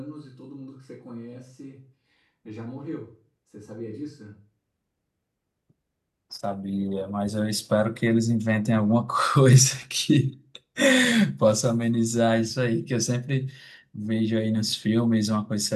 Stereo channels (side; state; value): both; identical; correlation 1.00